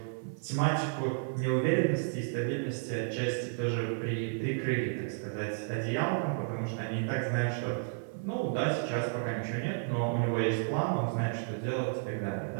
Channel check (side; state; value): left; silent; 56 dB below the other